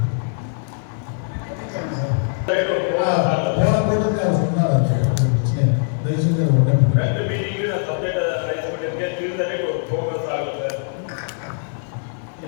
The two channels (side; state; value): right; silent; 65 dB below the other